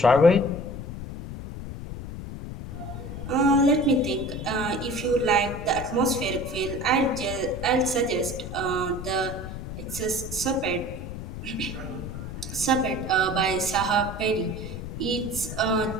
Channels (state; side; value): noise; left; rumble, 8 dB below the sound